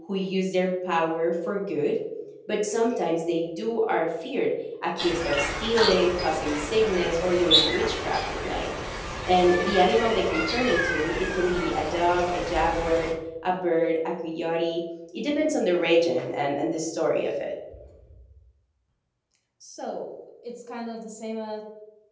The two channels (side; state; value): both; identical; correlation 1.00